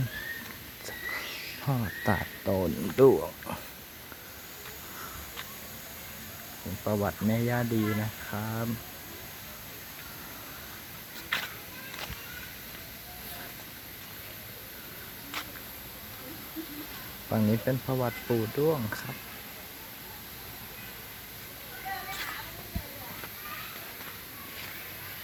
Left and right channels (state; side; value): identical; both; correlation 1.00